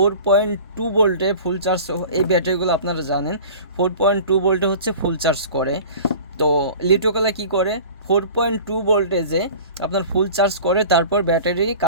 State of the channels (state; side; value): inverted; both; correlation -0.41